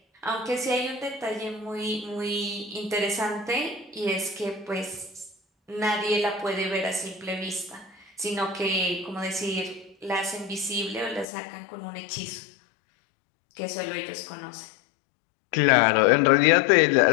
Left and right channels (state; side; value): drops out; right; at 11.2 s